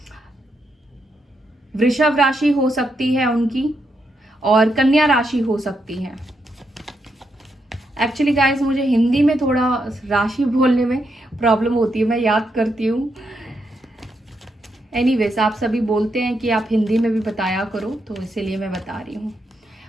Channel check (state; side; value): normal; both; correlation 0.81